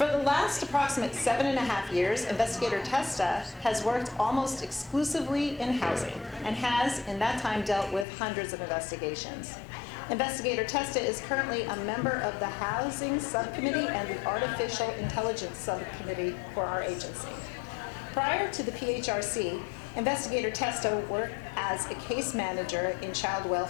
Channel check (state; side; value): drops out; right; at 8.1 s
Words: the last approximate 7.5 years, Investigator Testa has worked almost exclusively in housing and has, in that time, dealt with hundreds of investigations. Investigator Testa is currently a member of the Housing Subcommittee and the Artificial Intelligence Subcommittee for our agency. Prior to the PHRC, Investigator Testa worked as a case manager in child